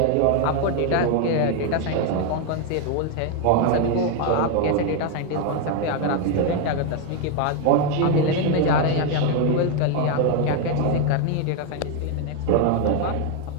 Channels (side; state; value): both; different; correlation 0.01